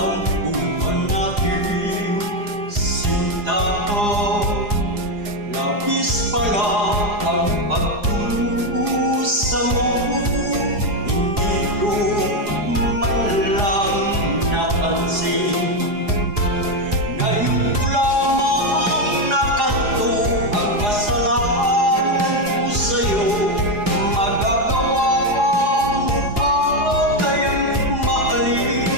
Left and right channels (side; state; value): left; late; 4.8 ms